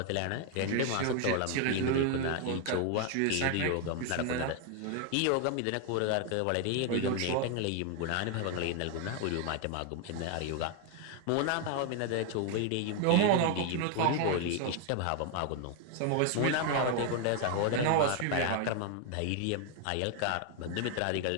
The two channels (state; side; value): different; both; correlation 0.01